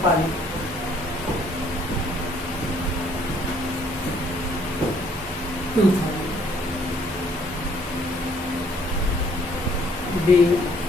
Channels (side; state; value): both; normal; correlation 0.63